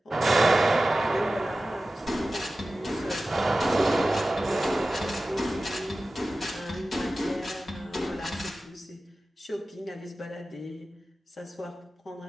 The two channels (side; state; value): both; normal; correlation 0.95